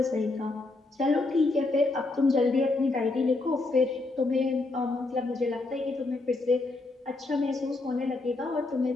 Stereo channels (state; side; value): quieter; right; 3.2 dB